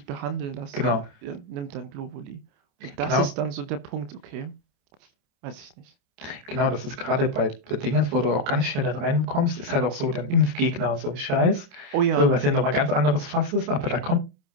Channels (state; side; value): late; left; 28 ms